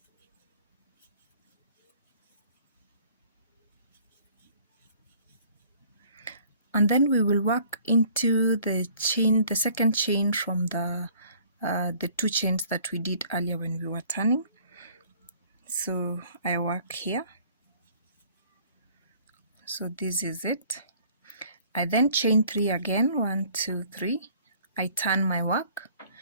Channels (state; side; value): inverted; both; correlation -0.55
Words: And then we will work into the chain, the second chain from the 2 chains that we did earlier when we were turning. So I work here. So this is it. I then chain 3 again, 1, 2, 3. I turn my work.